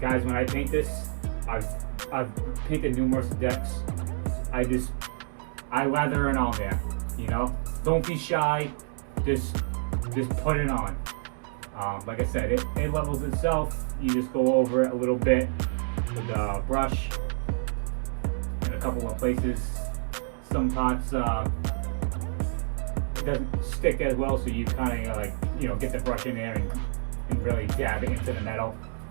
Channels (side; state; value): left; silent; 59 dB below the other